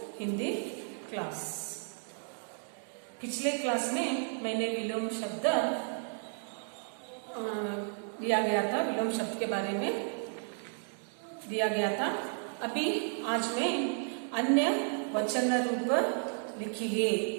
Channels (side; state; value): left; silent; 56 dB below the other